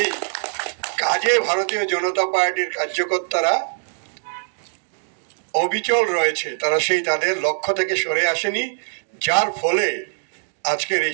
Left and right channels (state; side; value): silent; left; 64 dB below the other